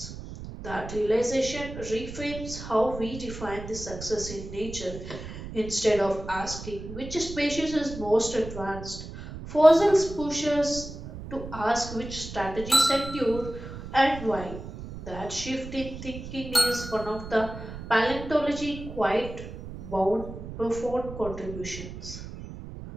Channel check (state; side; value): noise; right; rumble, 11 dB below the sound